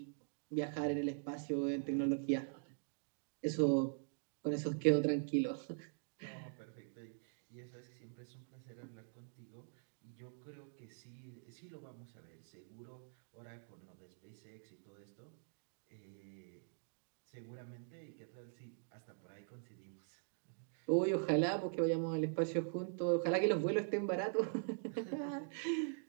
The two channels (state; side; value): silent; left; digital silence